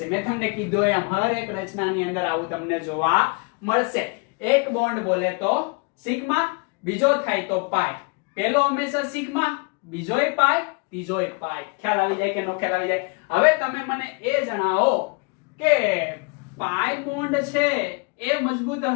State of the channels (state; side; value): quieter; right; 31.6 dB